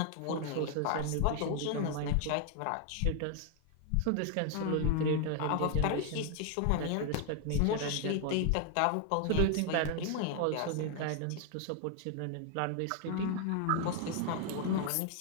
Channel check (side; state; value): both; different; correlation 0.00